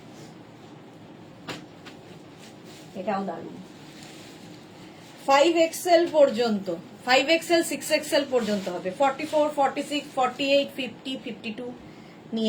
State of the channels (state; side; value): identical; both; correlation 1.00